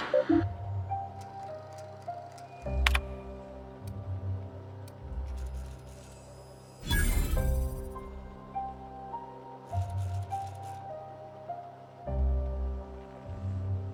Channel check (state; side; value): identical; both; correlation 1.00